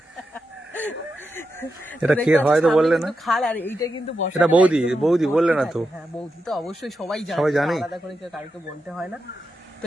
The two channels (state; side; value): normal; both; correlation 0.87